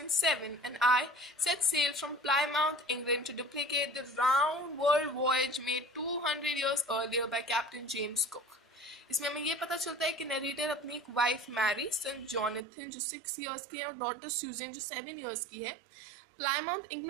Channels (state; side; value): drops out; left; at 12.7 s